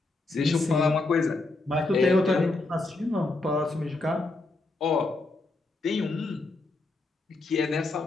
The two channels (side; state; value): right; quieter; 3.2 dB